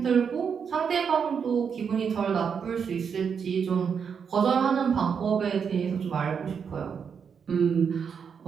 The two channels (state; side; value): quieter; left; 6.7 dB